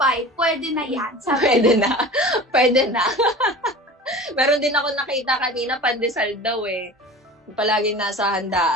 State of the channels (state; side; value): normal; both; correlation 0.37